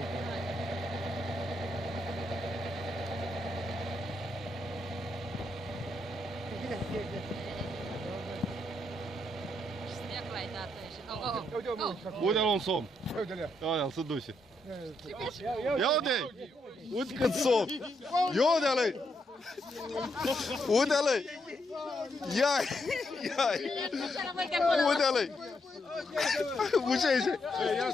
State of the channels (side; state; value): both; normal; correlation 0.79